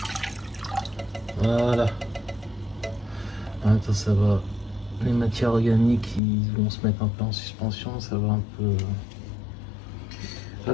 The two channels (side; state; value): right; drops out; at 6.2 s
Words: Voilà. Attends, ça va. Les matières organiques, ils vont se mettre un peu en suspension, ça va un peu...